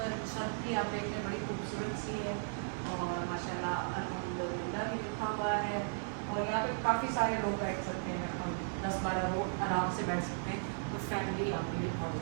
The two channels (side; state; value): left; silent; 54 dB below the other